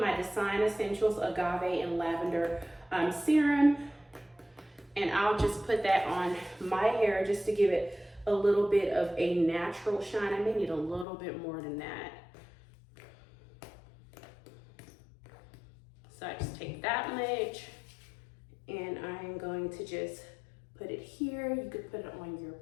Design Essentials Agave and Lavender serum, and I'll just put that on my hair just to give it a little bit of a natural shine. I may need a little bit more than that. So I just take that much, and I'm going to just put it here. You could put it on your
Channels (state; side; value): drops out; right; at 11.1 s